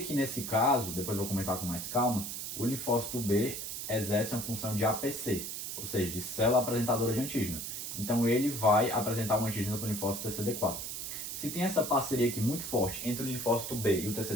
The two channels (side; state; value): right; noise; hiss, 5 dB below the sound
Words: nesse caso, depois eu vou comentar com mais calma, o linfócito B exerce uma função de APC, ou seja, de célula apresentadora de antígeno. Então ele vai apresentar um antígeno para o linfócito TCD4. Se tem essa parceria aqui muito forte entre o linfócito B e o